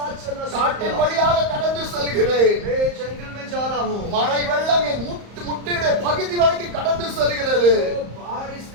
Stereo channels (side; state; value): left; late; 34 ms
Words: चलना शुरू காட்டின் किया। வழியாக கடந்து செல்கிறேன். मैं जंगल में जा रहा हूँ, மழை வெள்ளம் என் முட்டியுடைய பகுதி வரைக்கும் கடந்து செல்கிறது. तो बारिश